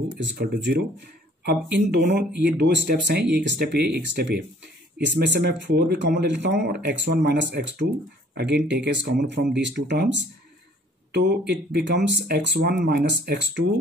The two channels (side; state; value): both; normal; correlation 0.57